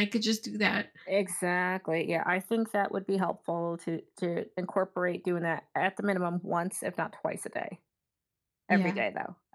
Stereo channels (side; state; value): both; identical; correlation 1.00